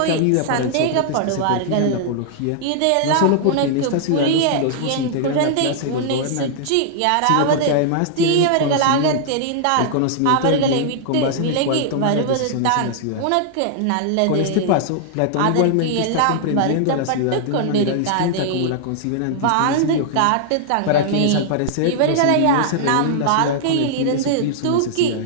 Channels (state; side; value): different; both; correlation -0.01